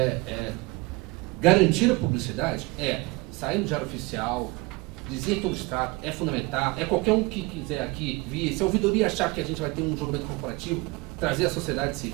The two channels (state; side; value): quieter; left; 24.4 dB